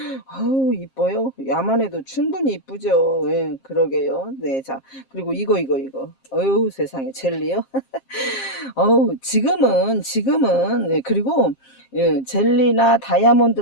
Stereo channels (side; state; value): right; late; 7.5 ms